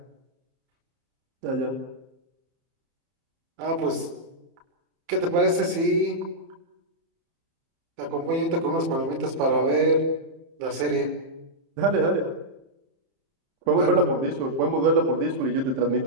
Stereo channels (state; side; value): late; left; 30 ms